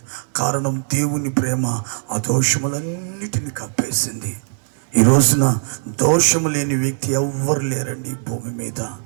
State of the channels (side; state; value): left; silent; digital silence